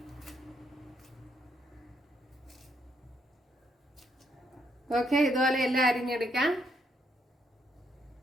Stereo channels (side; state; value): both; normal; correlation 0.74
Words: ഓക്കെ, ഇതുപോലെ എല്ലാം അരിഞ്ഞെടുക്കാം.